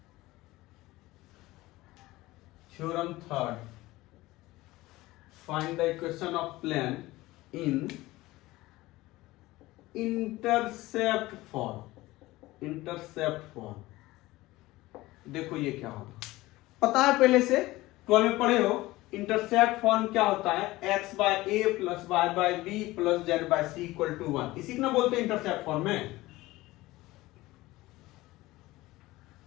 theorem third, find the equation of plane in intercept form. Intercept form देखो ये क्या होगा, पता है पहले से, 12 में पढ़े हो। इंटरसेप्ट फॉर्म क्या होता है? x by A plus y by B plus z by C equal to 1। इसी को ना बोलते हैं इंटरसेप्ट फॉर्म में।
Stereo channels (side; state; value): right; quieter; 18.7 dB